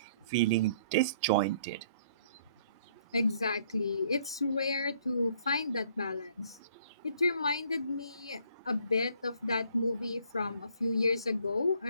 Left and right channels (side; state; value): both; inverted; correlation -0.62